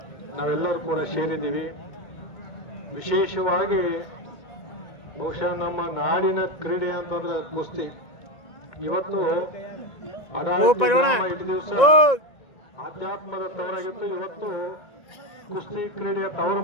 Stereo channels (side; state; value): right; late; 1.9 ms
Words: ನಾವೆಲ್ಲರೂ ಕೂಡ ಸೇರಿದ್ದೀವಿ. ವಿಶೇಷವಾಗಿ ಬಹುಶಃ ನಮ್ಮ ನಾಡಿನ ಕ್ರೀಡೆ ಅಂತಂದ್ರೆ ಕುಸ್ತಿ. ಇವತ್ತು ಇಷ್ಟು ದಿವಸ ಆಧ್ಯಾತ್ಮದ ತವರಾಗಿತ್ತು, ಇವತ್ತು ಕುಸ್ತಿ ಕ್ರೀಡೆಯ ತವರ